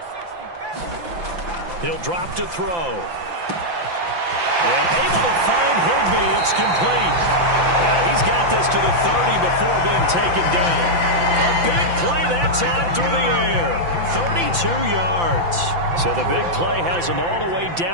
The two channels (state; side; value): late; left; 5.8 ms